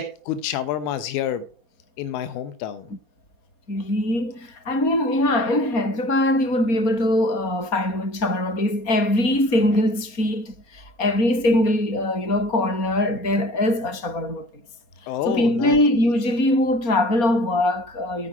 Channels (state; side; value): late; right; 4.3 ms